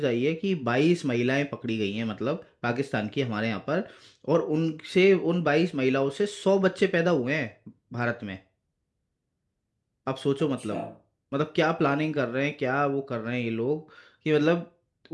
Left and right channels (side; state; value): both; identical; correlation 1.00